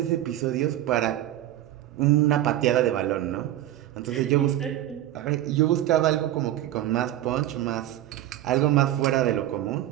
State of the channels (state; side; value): quieter; left; 13.5 dB